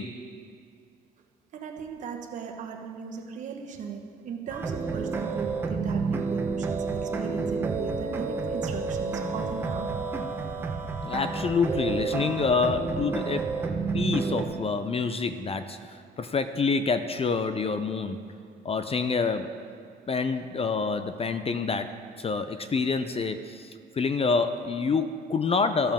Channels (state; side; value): normal; both; correlation 0.53